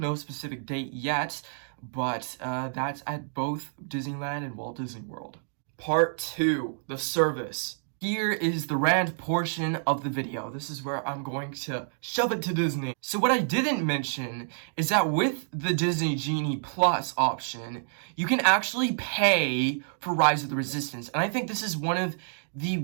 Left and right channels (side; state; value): left; silent; digital silence